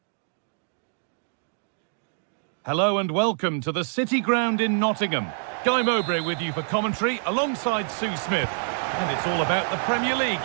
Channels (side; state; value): left; silent; digital silence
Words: Hello and welcome to the City Ground in Nottingham. Guy Mowbray with you for commentary alongside Sue Smith. And it's all about the Premier League